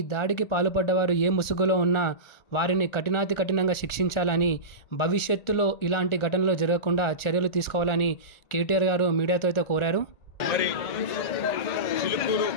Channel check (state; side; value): late; right; 1.4 ms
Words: దాడికి పాల్పడ్డవారు ఏ ముసుగులో ఉన్నా వారిని కఠినంగా శిక్షించాలని, భవిష్యత్తులో ఇలాంటి ఘటనలు జరగకుండా చర్యలు తీసుకోవాలని కేటీఆర్ గారు మీడియాతో అయితే కోరారు. మరి చిలుకూరు